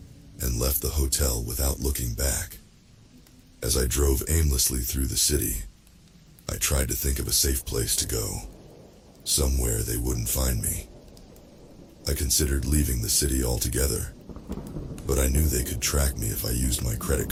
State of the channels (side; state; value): both; identical; correlation 1.00